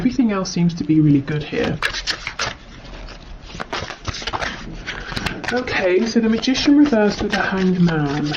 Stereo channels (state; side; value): identical; both; correlation 1.00